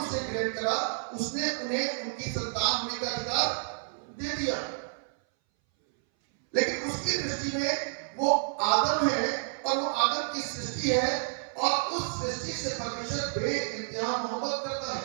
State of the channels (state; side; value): silent; left; 58 dB below the other